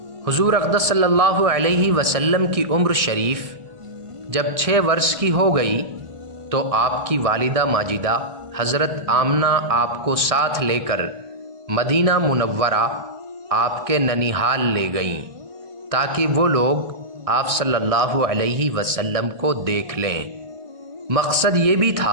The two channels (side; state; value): left; late; 1.6 ms